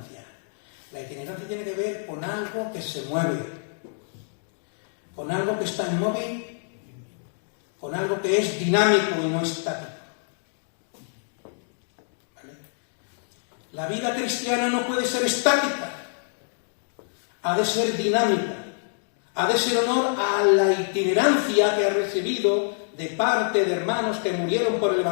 La itinerancia tiene que ver con algo que se mueve, con algo que está inmóvil, con algo que es dinámico y no estático. ¿Vale? La vida cristiana no puede ser estática, ha de ser dinámica, ha de ser honor a la itinerancia que ha recibido de parte de hermanos que murieron por el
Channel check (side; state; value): right; silent; digital silence